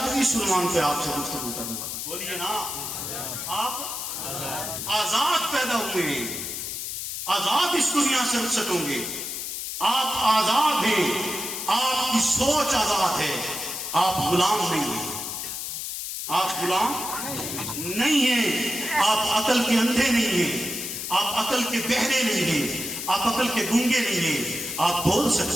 اس عنوان پہ آپ سے گفتگو کروں گا. بولیے نا, آپ آزاد پیدا ہوئے ہیں, آزاد اس دنیا سے رخصت ہوں گے, آپ آزاد ہیں, آپ کی سوچ آزاد ہے, آپ غلام نہیں ہیں, آپ غلام نہیں ہیں, آپ عقل کے اندھے نہیں ہیں, آپ عقل کے بہرے نہیں ہیں, آپ عقل کے گونگے نہیں ہیں, آپ بول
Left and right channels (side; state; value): left; noise; hiss, 5 dB below the sound